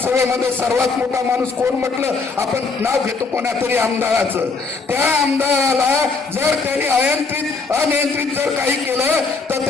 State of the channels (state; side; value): quieter; right; 4.3 dB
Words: सर्वात मोठा माणूस कोण म्हटलं, आपण नाव घेतो कोणा तरी आमदाराचं. त्या आमदाराला जर त्यांनी अनियंत्रित जर काही केलं तर